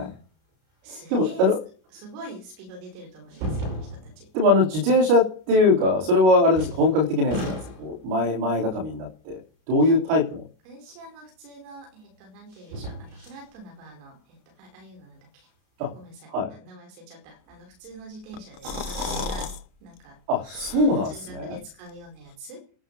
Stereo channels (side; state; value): left; late; 32 ms